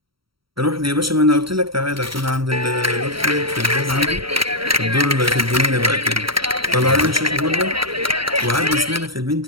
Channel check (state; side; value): late; left; 0.75 ms